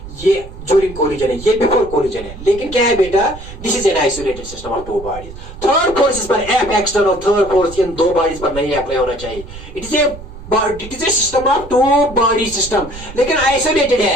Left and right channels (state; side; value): noise; right; rumble, 14 dB below the sound